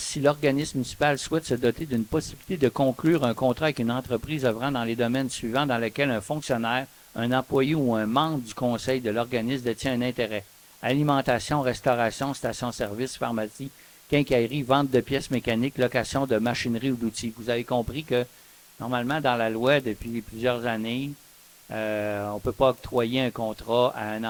l'organisme municipal souhaite se doter d'une possibilité de conclure un contrat avec une entreprise œuvrant dans les domaines suivants dans lesquels un fonctionnaire, un employé ou un membre du conseil de l'organisme détient un intérêt. Alimentation, restauration, station-service, pharmacie, quincaillerie, vente de pièces mécaniques, location de machinerie ou d'outils. Vous avez compris que normalement dans la loi depuis plusieurs années, on ne peut pas octroyer un contrat à un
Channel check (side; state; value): both; identical; correlation 1.00